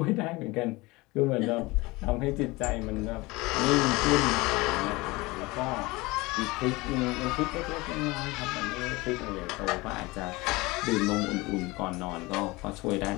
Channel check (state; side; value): quieter; right; 22.5 dB